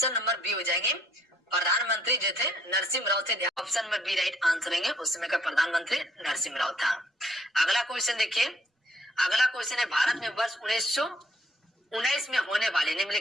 number B हो जाएंगे, प्रधानमंत्री जो थे नरसिम्हा राव थे, option number B right answer है, उस समय का प्रधानमंत्री नरसिम्हा राव था। अगला क्वेश्चन देखिए, अगला क्वेश्चन है भारत में वर्ष 1919 में होने वाले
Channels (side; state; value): both; normal; correlation 0.66